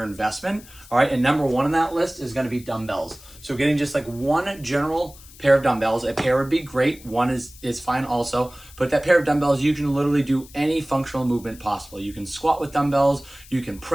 investment. All right, and number one on that list is going to be dumbbells. So getting just like one general pair of dumbbells. A pair would be great. One is fine also. But that pair of dumbbells, you can literally do any functional movement possible. You can squat with dumbbells, you can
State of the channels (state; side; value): noise; left; hiss, 21 dB below the sound